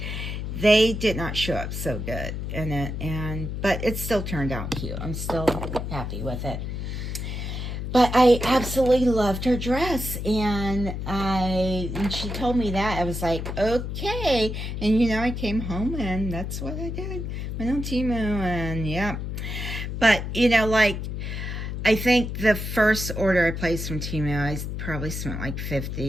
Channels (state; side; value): noise; left; hum, 5 dB below the sound